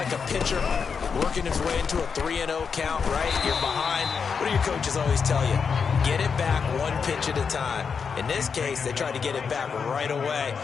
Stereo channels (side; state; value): right; quieter; 6.0 dB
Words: a pitcher working his way into a 3-0 count, right? You're behind. What do your coaches always tell you? Get it back one pitch at a time. In this case, they tried to get it back right away,